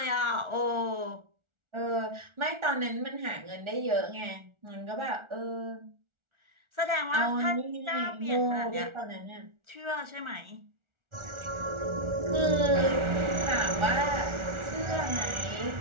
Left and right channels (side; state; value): left; late; 1.4 ms